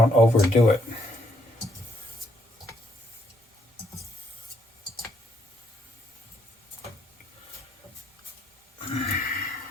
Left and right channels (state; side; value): normal; both; correlation 0.72